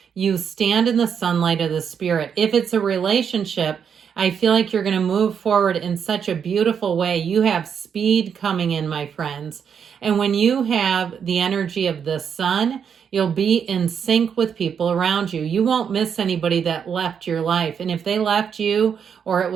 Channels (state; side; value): quieter; left; 7.3 dB